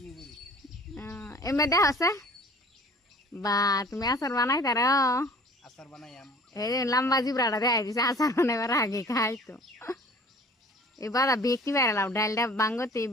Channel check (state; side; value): normal; both; correlation 0.48